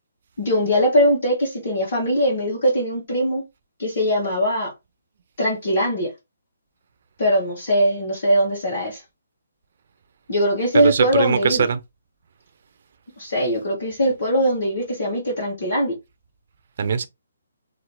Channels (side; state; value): both; inverted; correlation -0.62